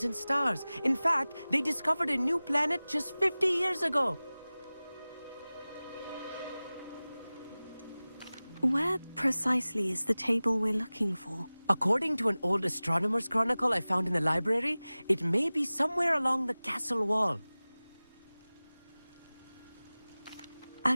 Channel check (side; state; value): both; inverted; correlation -0.98